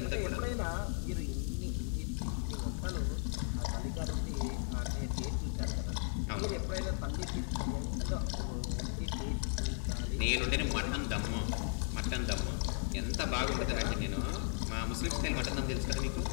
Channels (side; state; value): right; silent; 54 dB below the other